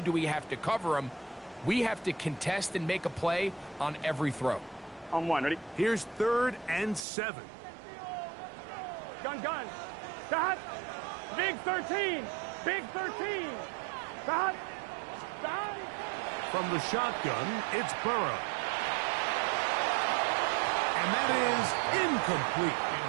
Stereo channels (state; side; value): drops out; left; at 7.1 s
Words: do we have to cover him, we have to contest and make a play on every throw. On 1, ready? Here's 3rd and 7. Gun. Stop. Big 13. Big 13. Stop. From the shotgun, it's Burrow. And that is incomplete.